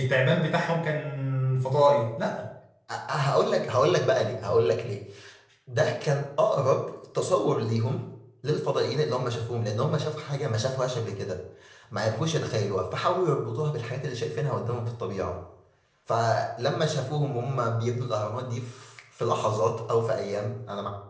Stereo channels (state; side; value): identical; both; correlation 1.00